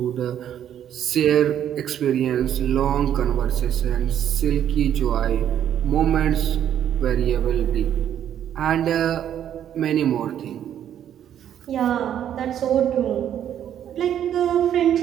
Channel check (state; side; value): quieter; left; 10.1 dB